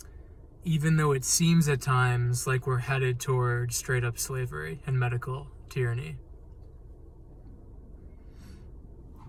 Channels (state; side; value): identical; both; correlation 1.00